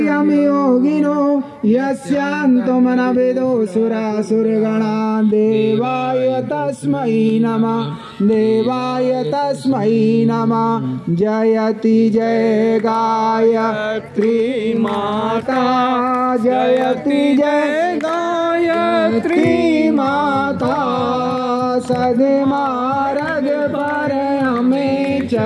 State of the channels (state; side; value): identical; both; correlation 1.00